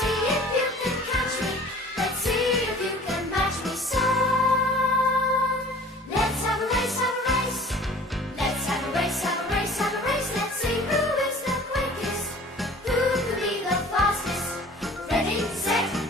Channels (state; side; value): normal; both; correlation 0.46